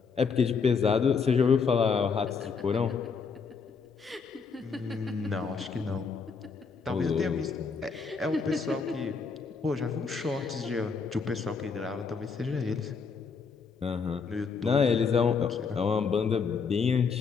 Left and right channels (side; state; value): right; quieter; 5.4 dB